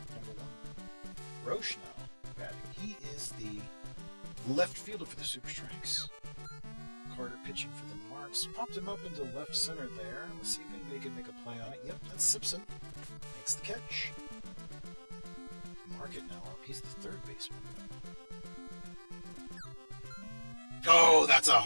Number 1. Roche now batting. He is the left fielder for the Super Strikes. Carter pitching for the Marks. Popped him up into left center there. Let's see if anybody can make a play on it. Yep, that's Simpson. Makes the catch. Market now up. He's the third baseman. Oh, that's a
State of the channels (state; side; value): inverted; both; correlation -1.00